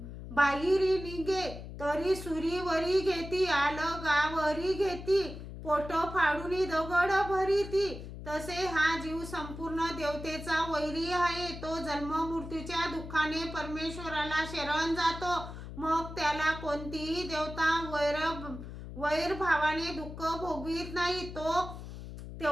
बाहिरी निघे, तरी सुरीवरी घेती, आलगावरी घेती, पोट फाडूनी दगड भरीती। तसे हा जीव संपूर्ण देवतेचा वैरी आहे। तो जन्म मृत्यूच्या दुःखाने परमेश्वराला शरण जातो, मग त्याला कोणतीही देवता वैरभावाने दुःख भोगवित नाही। तो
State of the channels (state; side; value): noise; left; hum, 11 dB below the sound